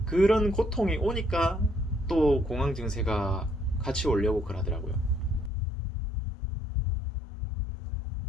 그런 고통이 오니까 또 공황 증세가 같이 오려고 그러더라고요.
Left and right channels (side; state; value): right; drops out; at 5.5 s